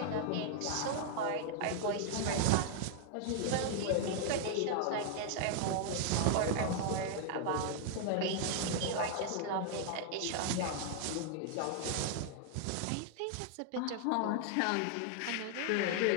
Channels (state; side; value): different; both; correlation 0.00